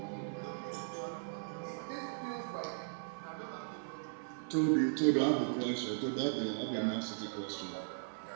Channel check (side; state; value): left; silent; digital silence